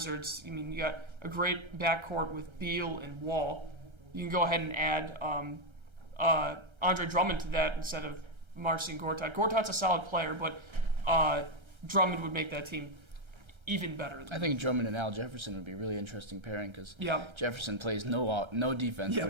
I mean, you got a great backcourt with Beal and Wall. You can go ahead and add Andre Drummond to that instead of Marcin Gortat. Gortat's a solid player, but Drummond would make that team even better. I think Drummond and Al Jefferson would be a really interesting pairing because yeah. Jefferson plays no defense, yeah.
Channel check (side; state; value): left; late; 1.3 ms